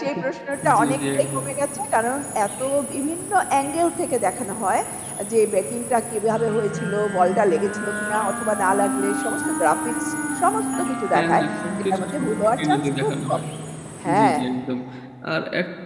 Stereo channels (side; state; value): both; identical; correlation 1.00